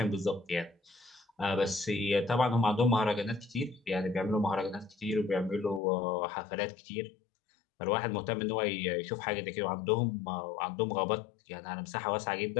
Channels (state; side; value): drops out; right; at 5.8 s